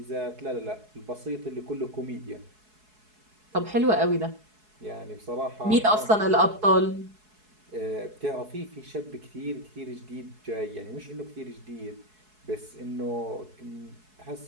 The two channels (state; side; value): late; left; 4.7 ms